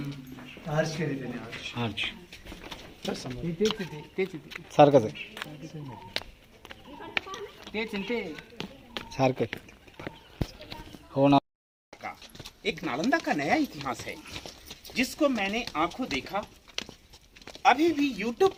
आर्च केली त्याने आर्च तेच सारखंच आहे, सारखं आहे. हो ना. का एक नालंदा का नया इतिहास है जिसको मैंने आंखों देखा, अभी भी YouTube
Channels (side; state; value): both; identical; correlation 1.00